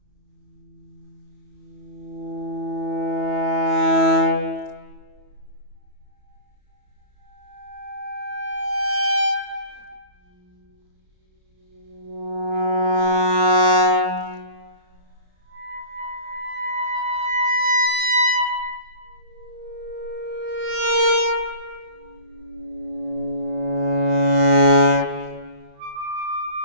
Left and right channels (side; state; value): left; late; 34 ms